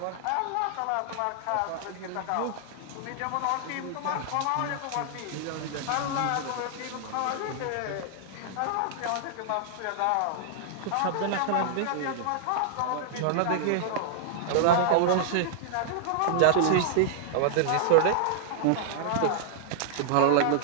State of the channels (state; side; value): different; both; correlation -0.01